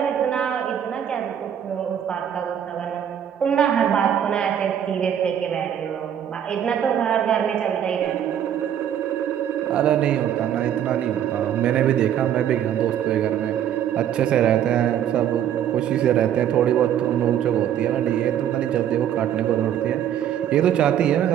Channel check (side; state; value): left; quieter; 9.9 dB